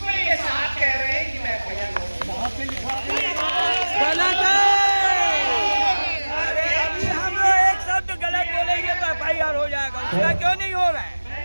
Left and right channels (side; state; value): both; inverted; correlation -1.00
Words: ये साहब कह रहे हैं कि मैं एफआईआर गलत है। अभी हम लोग एक शब्द गलत बोलेंगे तो एफआईआर हो जाएगा, उसका क्यों नहीं हो रहा है?